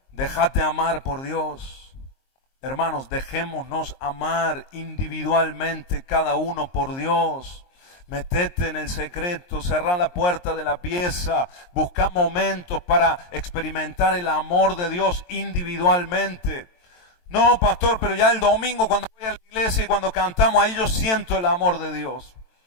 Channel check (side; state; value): right; late; 23 ms